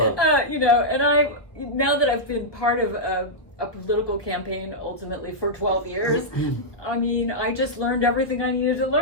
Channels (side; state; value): right; late; 1.0 ms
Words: now that I've been part of a political campaign ultimately for 12 years, I mean, I just learned everything I needed to